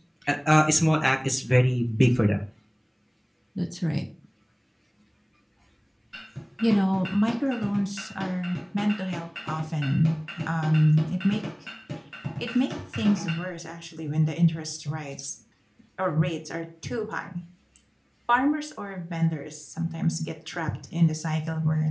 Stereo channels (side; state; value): both; identical; correlation 1.00